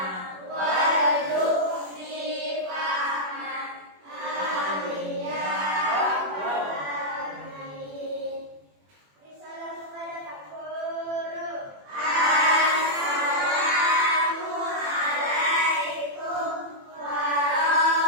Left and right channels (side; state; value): left; late; 21 ms